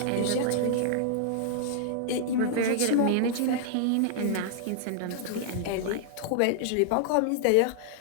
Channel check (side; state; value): both; different; correlation -0.01